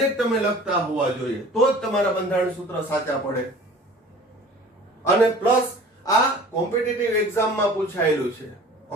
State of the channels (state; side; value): normal; both; correlation 0.45